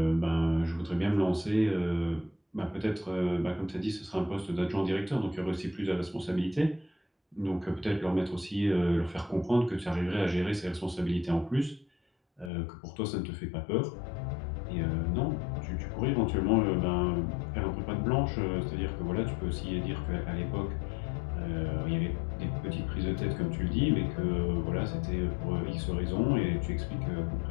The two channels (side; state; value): right; drops out; at 12.5 s